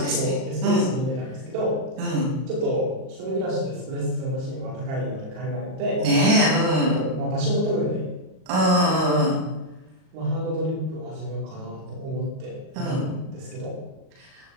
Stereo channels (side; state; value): left; late; 38 ms